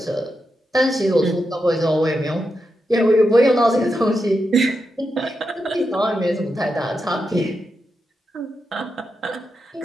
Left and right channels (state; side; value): normal; both; correlation 0.86